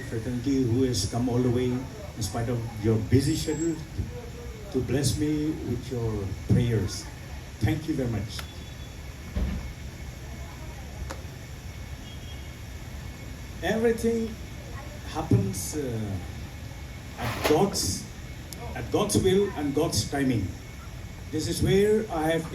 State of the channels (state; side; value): identical; both; correlation 1.00